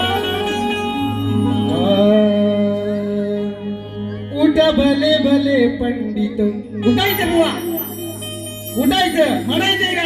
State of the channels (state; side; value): identical; both; correlation 1.00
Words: उठा भले भले पंडित उठायचं बुवा उठायचं म्हणायचंय